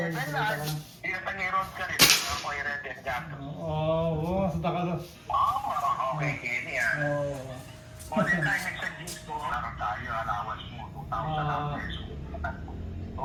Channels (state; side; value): identical; both; correlation 1.00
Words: Salita ka na. Hindi na tangiron ka rin. Ako ay red and gato. Oo, salita ka na. Okay, Kenny ah. Oo. All the time nagsa-jeans ko, parang tayo, allowance mo, 2,000 pesos.